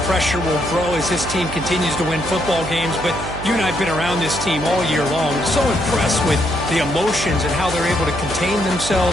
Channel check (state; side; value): noise; right; hum, 9 dB below the sound